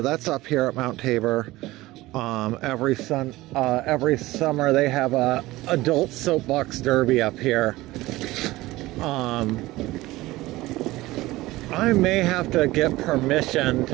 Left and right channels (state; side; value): quieter; left; 18.5 dB